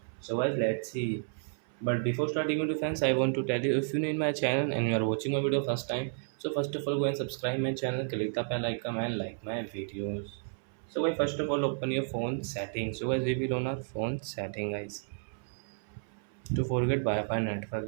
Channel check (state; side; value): silent; left; 57 dB below the other